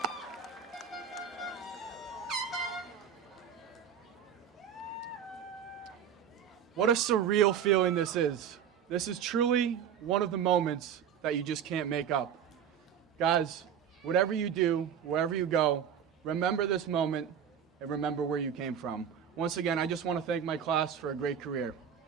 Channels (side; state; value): left; quieter; 8.4 dB